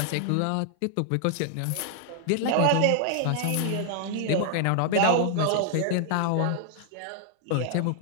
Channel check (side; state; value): both; different; correlation 0.00